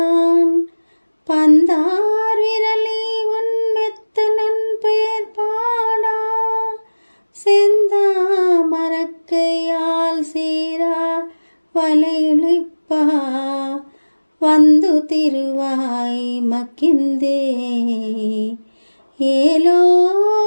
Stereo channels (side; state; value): both; inverted; correlation -1.00